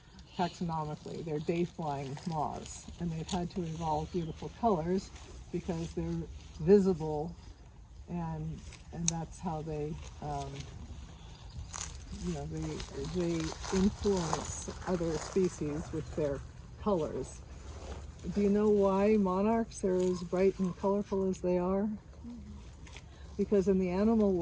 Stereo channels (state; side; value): identical; both; correlation 1.00